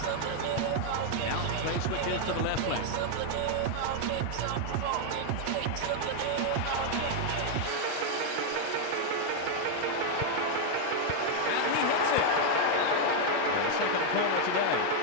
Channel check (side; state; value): both; different; correlation 0.00